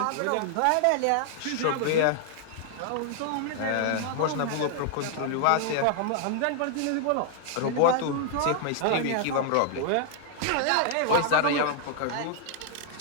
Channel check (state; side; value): different; both; correlation 0.00